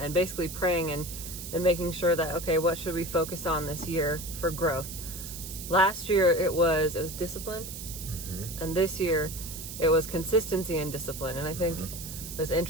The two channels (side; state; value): right; noise; hiss, 10 dB below the sound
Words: basically praying and making sure that, okay, what should we focus on this year for growth? Last year it was discipline, and this year it was consistency and discipline. And I think it was